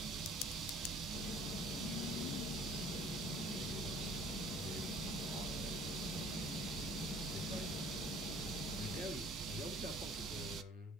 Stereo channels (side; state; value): both; normal; correlation 0.52